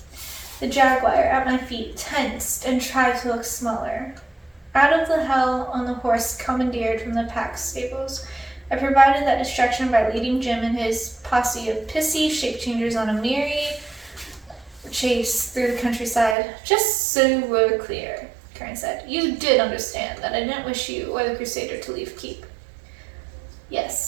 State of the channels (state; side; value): drops out; left; at 16.4 s